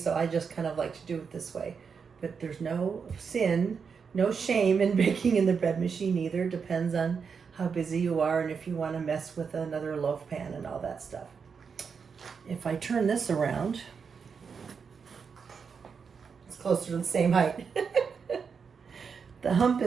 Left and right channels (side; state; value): left; quieter; 6.0 dB